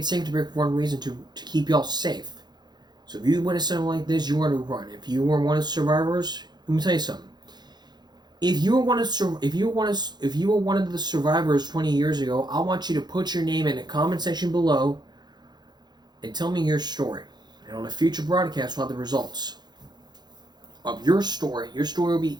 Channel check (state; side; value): late; left; 0.21 ms